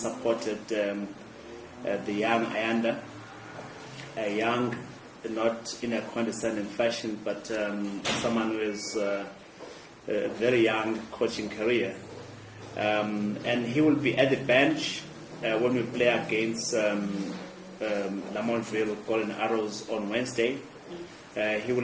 the young Ayanda, a young, not in a condescending fashion, but someone who is a very young coaching career. And he will be at the bench when we play against Lamontville Golden Arrows on Wednesday. He will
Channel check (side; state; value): both; identical; correlation 1.00